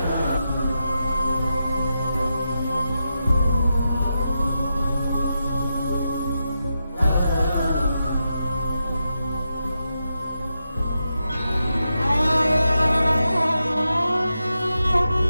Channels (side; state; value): both; inverted; correlation -0.87